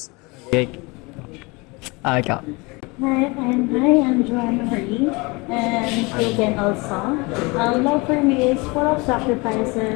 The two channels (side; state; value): right; quieter; 26.3 dB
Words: Okay. Ikaw. Hi, I'm Joanna Marie, and Taken also. Love for me is full of